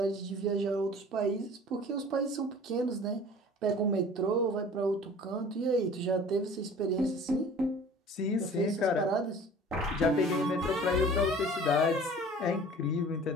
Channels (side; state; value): both; normal; correlation 0.46